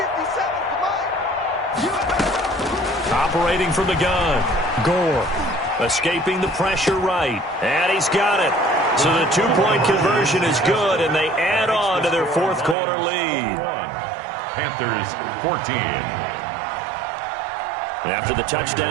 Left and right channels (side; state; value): left; drops out; at 12.8 s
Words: Operating from the gun, Gore. Escaping the pressure right, and he's got it. So the two-point conversion is good, and they add on to their fourth quarter lead. Panthers 14. After the